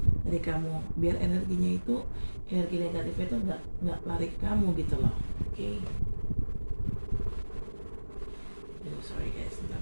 dari kamu, biar energi negatifnya itu nggak lari ke kamu gitu loh. Oke. Sorry guys,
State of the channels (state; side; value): inverted; both; correlation -1.00